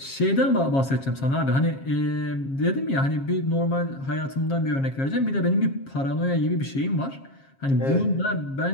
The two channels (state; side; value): late; right; 7.4 ms